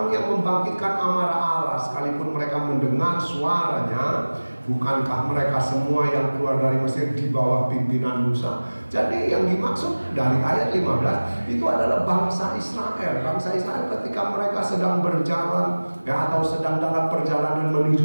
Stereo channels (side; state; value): both; inverted; correlation -1.00